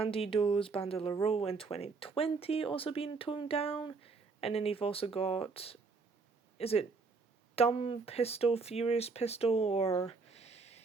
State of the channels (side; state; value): left; quieter; 4.4 dB